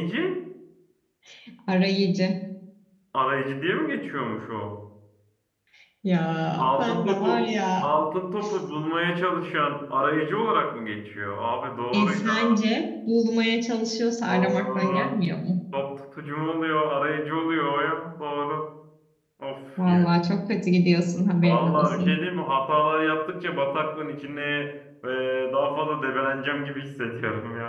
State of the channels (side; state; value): both; identical; correlation 1.00